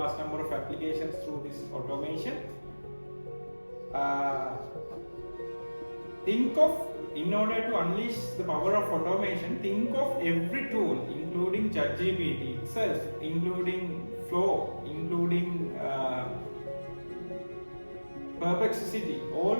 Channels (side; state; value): both; inverted; correlation -1.00